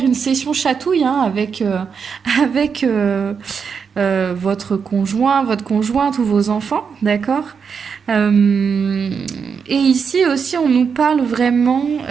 une session chatouille hein, avec votre conjoint, votre conjointe ou vos enfants, d'accord? Euh, et ici aussi, on nous parle vraiment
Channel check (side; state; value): left; quieter; 6.2 dB